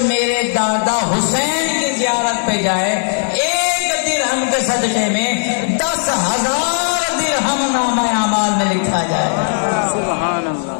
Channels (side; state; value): right; silent; digital silence